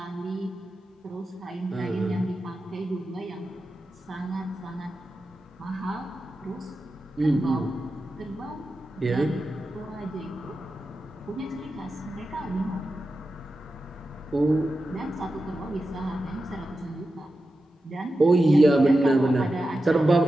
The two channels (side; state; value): both; normal; correlation 0.91